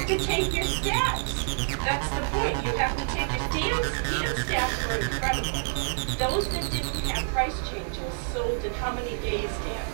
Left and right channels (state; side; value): silent; left; digital silence